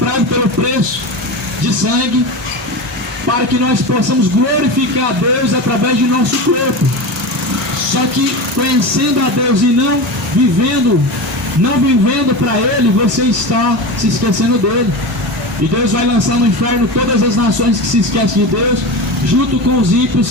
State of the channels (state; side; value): normal; both; correlation 0.24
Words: pelo preço de sangue, para que nós possamos glorificar a Deus através de nosso corpo. Só que conhecendo a Deus e não vivendo para Ele, você está se esquecendo dele. E Deus vai lançar no inferno todas as nações que se esquecem de Deus, junto com os ímpios